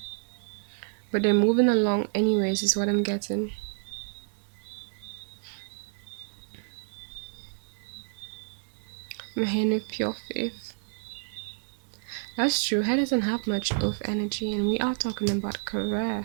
But they're moving along anyways, is what I'm getting. I'm hearing with pure faith. That's true. Her doesn't have much of energy, and we are talking about career.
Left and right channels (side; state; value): left; silent; digital silence